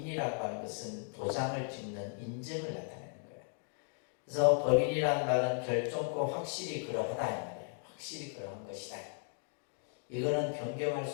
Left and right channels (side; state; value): right; silent; 54 dB below the other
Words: 하는 것은 도장을 찍는 인증을 나타내는 거예요. 그래서 법인이라는 말은 결정코 확실히 그러하다 이 말이에요. 확실히 그러한 것이다. 이거는 변경할